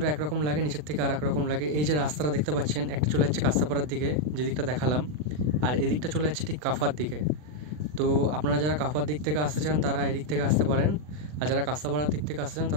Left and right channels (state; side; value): late; left; 40 ms